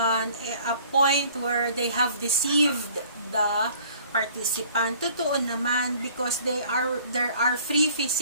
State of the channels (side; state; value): both; inverted; correlation -0.53